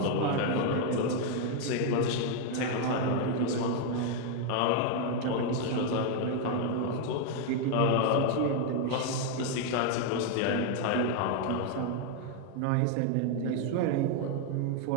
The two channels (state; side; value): different; both; correlation 0.01